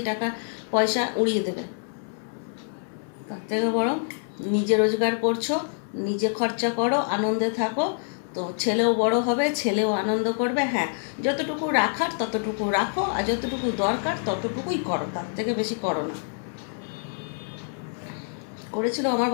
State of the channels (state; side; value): silent; right; 61 dB below the other